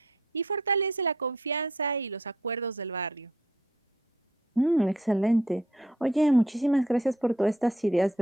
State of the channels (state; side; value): normal; both; correlation 0.65